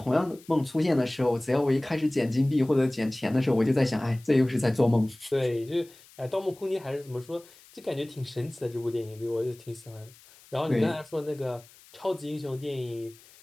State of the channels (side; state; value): left; noise; hiss, 25 dB below the sound